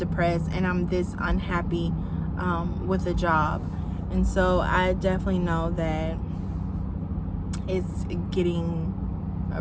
and I'm this unhappy with a job. And so I definitely know that it's getting,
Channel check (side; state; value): both; identical; correlation 1.00